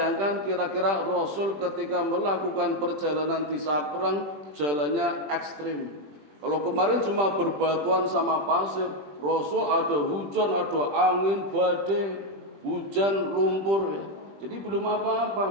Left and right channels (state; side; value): late; left; 20 ms